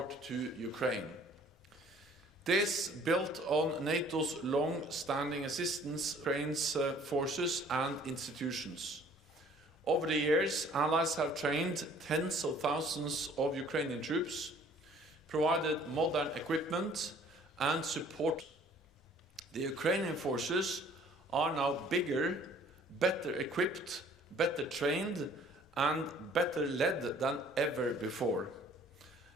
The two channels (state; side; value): normal; both; correlation 0.55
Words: to Ukraine. This built on NATO's long-standing assistance to Ukraine's forces and institutions. Over the years, allies have trained tens of thousands of Ukrainian troops, provided modern equipment and support. The Ukrainian forces are now bigger, better equipped, better trained, and better led than ever before.